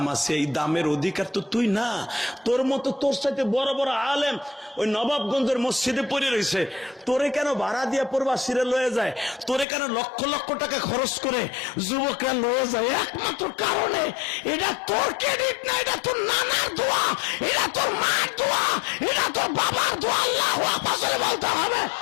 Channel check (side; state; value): right; drops out; at 9.7 s